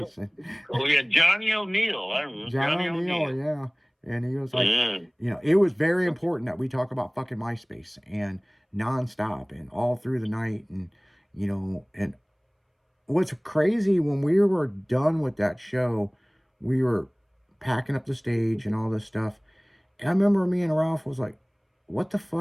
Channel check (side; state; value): both; identical; correlation 1.00